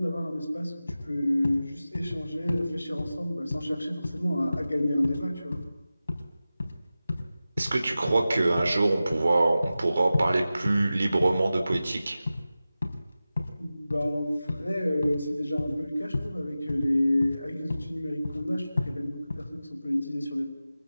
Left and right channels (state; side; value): inverted; both; correlation -0.95